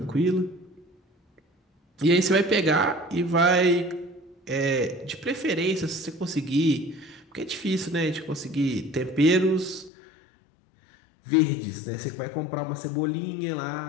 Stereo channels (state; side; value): drops out; right; at 9.9 s